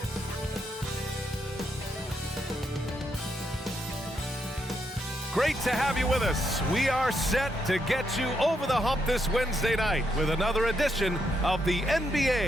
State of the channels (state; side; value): normal; both; correlation 0.79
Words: Great to have you with us. We are set to get you over the hump this Wednesday night with another edition of the